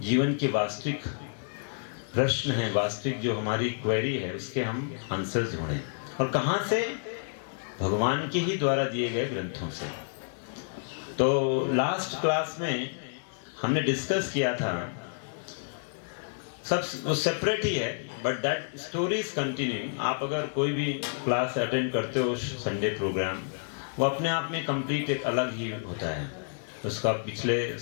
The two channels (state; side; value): silent; right; digital silence